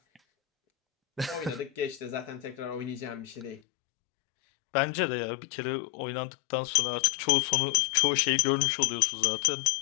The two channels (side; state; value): right; drops out; at 3.6 s